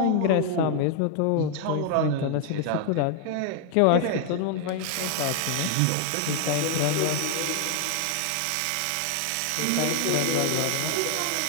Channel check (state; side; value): different; both; correlation 0.00